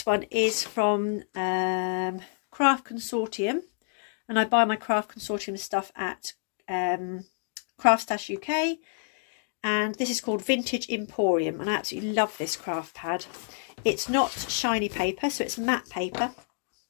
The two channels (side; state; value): right; silent; digital silence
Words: one is from Craft Consortium, and I buy my Craft Consortium stuff at Craft Stash UK, and this is called Vintage Emporium, and I absolutely love this craft pad. It's not shiny paper, so it's matte paper.